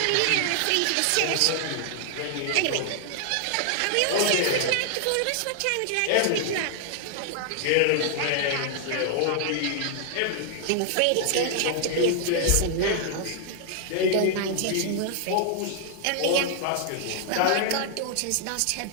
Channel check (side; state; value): both; different; correlation 0.00